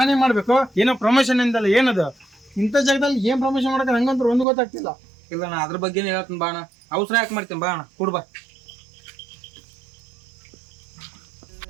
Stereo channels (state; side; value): drops out; left; at 4.5 s